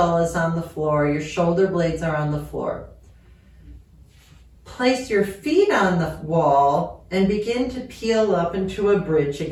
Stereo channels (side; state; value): both; identical; correlation 1.00